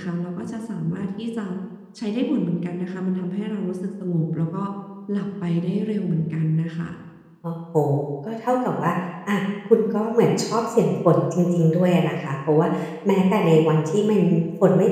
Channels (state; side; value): identical; both; correlation 1.00